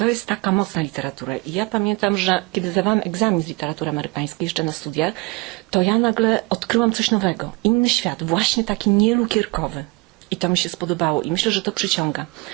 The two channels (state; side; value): quieter; left; 25.6 dB